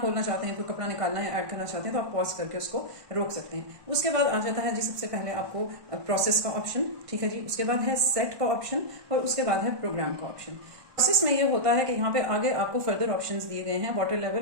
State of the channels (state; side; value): late; left; 1.2 ms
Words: चाहते हैं, कोई कपड़ा निकालना है, ऐड करना चाहते हैं तो आप पॉज करके उसको रोक सकते हैं। उसके बाद आ जाता है जी सबसे पहले आपको प्रोसेस का ऑप्शन, ठीक है जी। उसके बाद है सेट का ऑप्शन और उसके बाद है प्रोग्राम का ऑप्शन। प्रोसेस में ये होता है कि यहाँ पे आगे आपको फर्दर ऑप्शंस दिए गए हैं, water